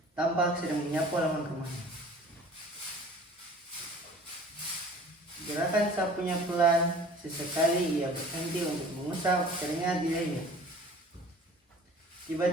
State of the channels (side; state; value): both; normal; correlation 0.47